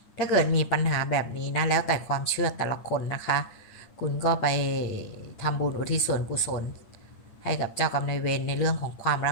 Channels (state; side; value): late; right; 8.9 ms